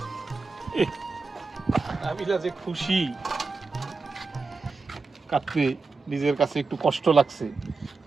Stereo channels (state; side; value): quieter; left; 4.2 dB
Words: আমি যে খুশি। কাটতে নিজের কাছে একটু কষ্ট লাগছে,